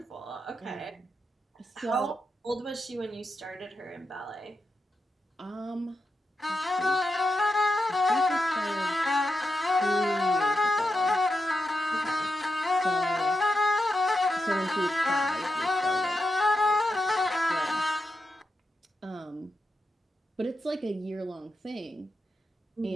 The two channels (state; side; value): normal; both; correlation 0.87